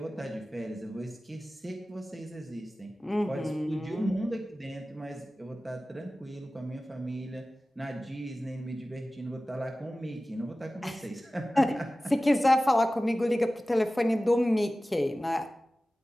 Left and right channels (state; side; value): normal; both; correlation 0.96